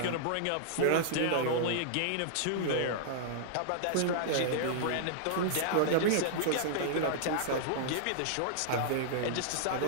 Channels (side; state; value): both; different; correlation -0.01